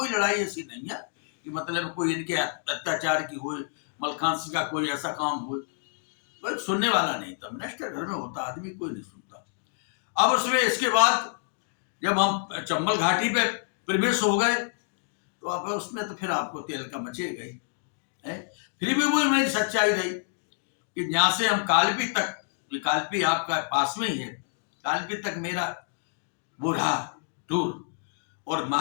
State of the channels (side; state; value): right; silent; digital silence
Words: लड़ाई ऐसी नहीं है कि मतलब कोई इनके अत्याचार की हो, मलखांसी का कोई ऐसा काम हो, कोई सुनने वाला नहीं था। मिनिस्टर घर में होता, आदमी कोई नहीं सुनता। अब उसमें इसके बाद जब हम चंबल घाटी पे प्रवेश हो गए तो अब उसमें तो फिर आपको तेल का मचे गई है। फिर भी वही मेरी सच्चाई रही कि यहाँ से हम कालपी तक, कालपी आपका पास में ही है, कालपी तक मेरा वो रहा टूर। और